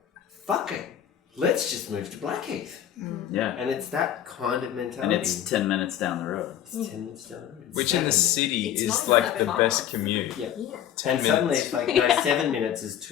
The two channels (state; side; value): quieter; right; 10.5 dB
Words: fuck it. Let's just move to Blackheath. Yeah. And it's that kind of mentality. And it's 10 minutes down the road. It's 10 minutes down the road. It's Which in the 7 minutes. city It's is not like that the far. best commute. Yep. 10 And suddenly minutes. it's like, no, 7 minutes is